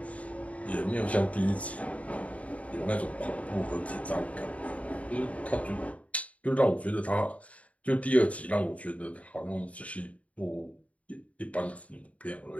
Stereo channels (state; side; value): late; right; 0.067 ms